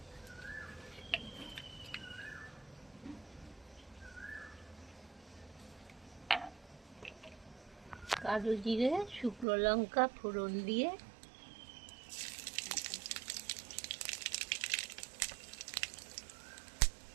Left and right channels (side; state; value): left; drops out; at 9.5 s